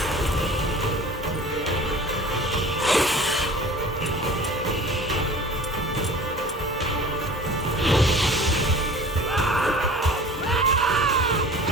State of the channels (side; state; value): both; normal; correlation 0.42